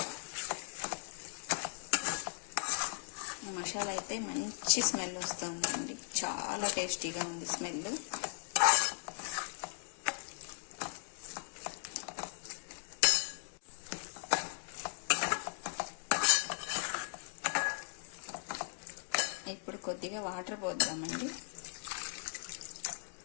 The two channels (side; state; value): right; silent; digital silence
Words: మసాలా అయితే మంచి స్మెల్ వస్తుందండి, చాలా టేస్టీగా ఉంది స్మెల్. ఇప్పుడు కొద్దిగా వాటర్ పోద్దామండి,